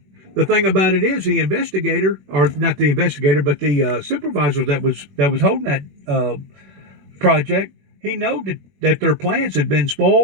The thing about it is the investigator, or not the investigator, but the supervisor that was holding that project, he knew that their plans had been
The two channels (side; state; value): left; late; 21 ms